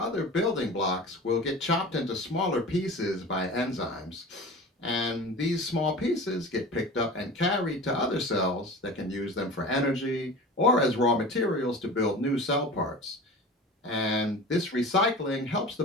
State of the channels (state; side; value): normal; both; correlation 0.35